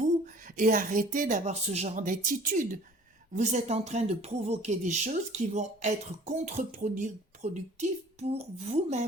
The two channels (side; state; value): both; normal; correlation 0.50